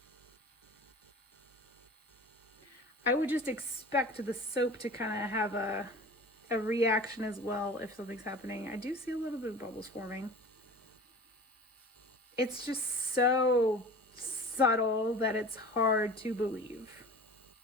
I would just expect the soap to kind of have a reaction as well if something's happening. I do see a little bit of bubbles forming. It's just so subtle that it's hard to believe.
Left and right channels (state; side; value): normal; both; correlation 0.39